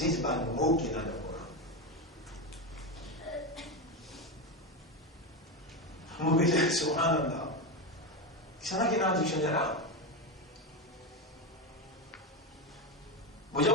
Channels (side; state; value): both; normal; correlation 0.14